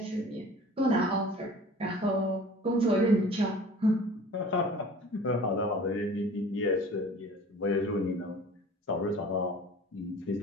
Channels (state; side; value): normal; both; correlation 0.44